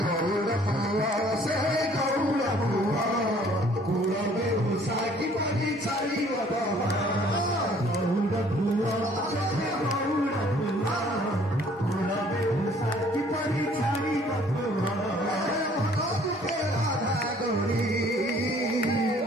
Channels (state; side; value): normal; both; correlation 0.57